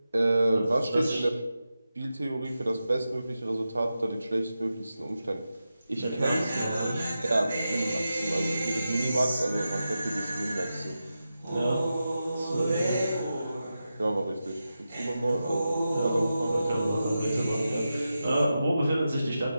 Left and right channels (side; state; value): both; inverted; correlation -0.91